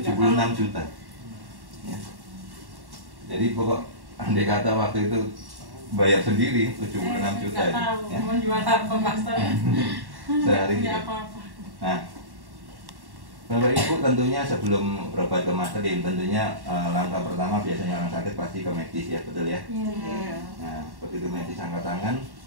juta ya. Jadi pokok andai kata waktu itu bayar sendiri 76 juta ya. Mau jual apa master? Sehari Ya ya. apa-apa. Nah, Bapak Ibu tentunya sebelum berobat ke Mas Lim, tentunya langkah pertama biasanya orang sakit pasti ke medis ya, betul ya? Iya. Nah, begitu medis angkat tangan,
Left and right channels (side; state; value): left; late; 1.1 ms